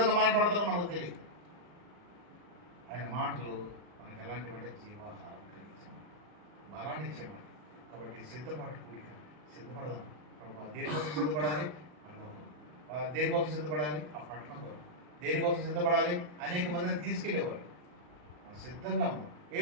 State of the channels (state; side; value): late; left; 40 ms